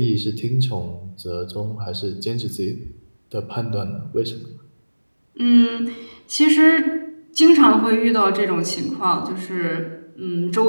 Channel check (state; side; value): inverted; both; correlation -1.00